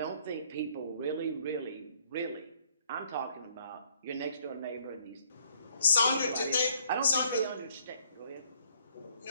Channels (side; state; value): both; inverted; correlation -0.63